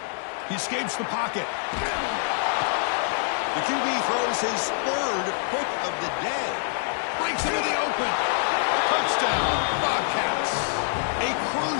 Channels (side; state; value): right; silent; digital silence